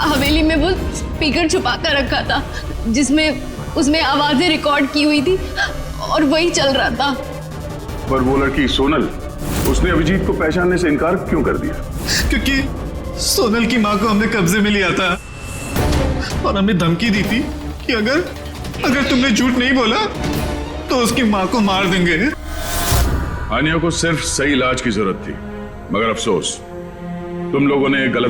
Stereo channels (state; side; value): identical; both; correlation 1.00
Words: में वो स्पीकर छुपा कर रखा था जिसमें उसमें आवाजें रिकॉर्ड की हुई थी और वही चल रहा था। पर वो लड़की सोनल, उसने अभिजीत को पहचानने से इनकार क्यों कर दिया? क्योंकि सोनल की माँ को हमने कब्जे में लिया था और हमने धमकी दी थी कि अगर तुमने झूठ नहीं बोला तो उसकी माँ को मार देंगे। आनिया को सिर्फ सही इलाज की जरूरत थी, मगर अफसोस तुम लोगों ने